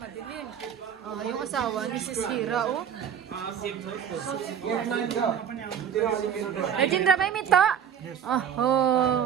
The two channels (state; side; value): quieter; left; 8.5 dB